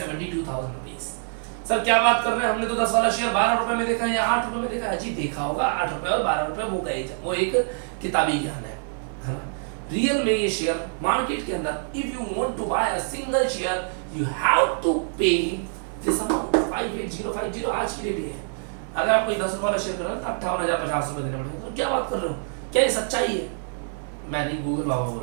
रुपीज। सर क्या बात कर रहे हैं, हमने तो 10 वाला शेयर 12 रुपए में देखा है या 8 रुपए में देखा है। जी देखा होगा, 8 रुपए और 12 रुपए वो गए, वो एक किताबी ज्ञान है ना। रियल में ये शेयर मार्केट के अंदर if you want to buy a single share you have to pay this amount 58050 आज की डेट है। अगर आप कोई 10 रुपए वाला शेयर कर रहे हो तो 58,050 रुपए देने पड़ेंगे। तो क्या बात कर रहे हो, क्या ये सच्चाई है? मैं नहीं, गूगल बाबा बोल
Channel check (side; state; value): left; silent; 62 dB below the other